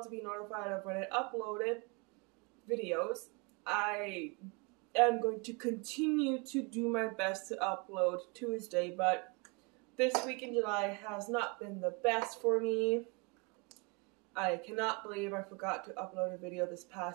to be notified of when I uploaded videos. I am going to continue to do my best to upload Tuesday, but this week in July has not been the best for me. I cannot believe I forgot to upload a video this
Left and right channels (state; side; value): quieter; left; 30.8 dB